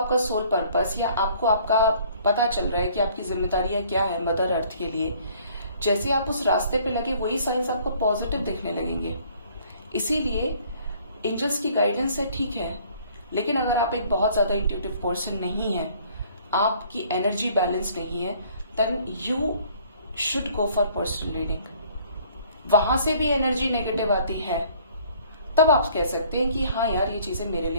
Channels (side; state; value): both; inverted; correlation -0.57